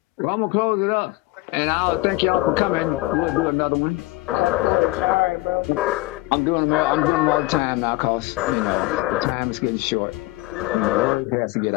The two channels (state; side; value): quieter; right; 19.8 dB